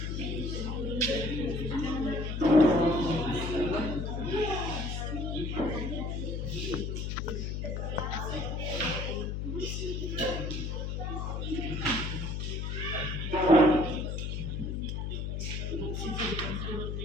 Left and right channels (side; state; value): left; noise; hum, 2 dB below the sound